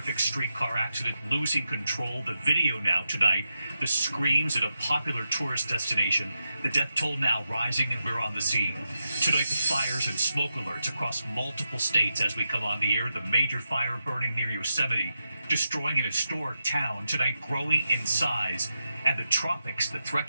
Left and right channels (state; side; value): inverted; both; correlation -0.87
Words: streetcar accident, losing control. The video now tonight. The screams at a popular tourist destination. The death toll now rising, and we're on the scene. Tonight, the fires and smoke alerts across multiple states as we come on the air. The major fire burning near Yosemite, destroying an historic town. Tonight, growing in size. And the tropics, the threat